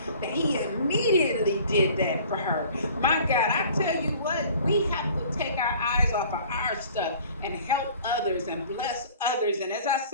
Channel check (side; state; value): both; inverted; correlation -0.49